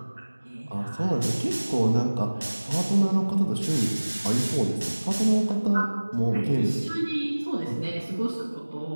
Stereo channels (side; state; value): both; inverted; correlation -1.00